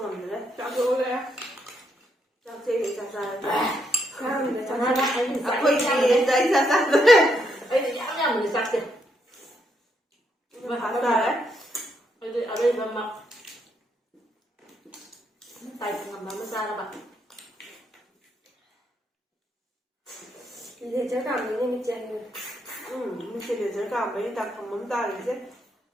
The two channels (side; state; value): both; normal; correlation 0.77